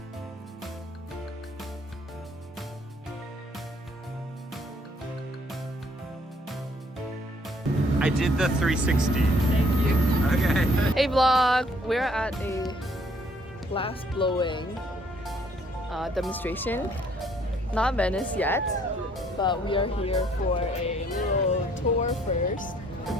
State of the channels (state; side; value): normal; both; correlation 0.63